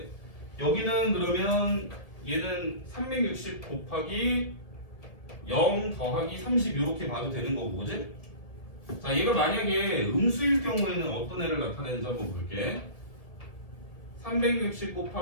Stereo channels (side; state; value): right; late; 1.9 ms